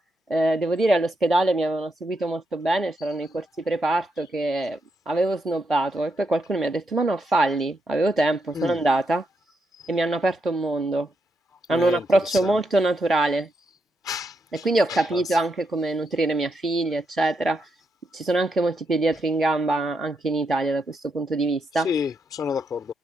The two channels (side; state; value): both; normal; correlation 0.82